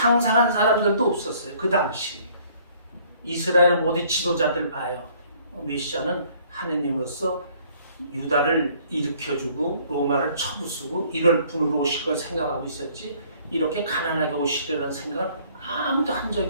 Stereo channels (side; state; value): both; inverted; correlation -0.59